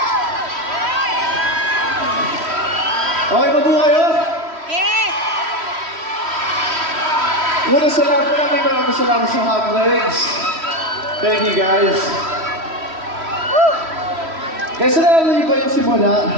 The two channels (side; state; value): left; late; 3.1 ms